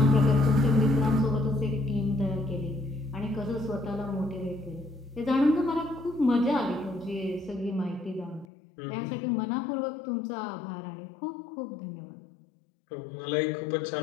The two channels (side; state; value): right; drops out; at 8.5 s